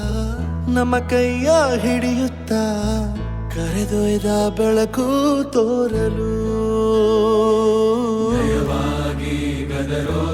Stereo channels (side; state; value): both; identical; correlation 1.00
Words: ನಮ್ಮ ಕೈಯ ಹಿಡಿಯುತ್ತ ಕರೆದೊಯ್ದ ಬೆಳಕು ತೋರಲು ನಯವಾಗಿ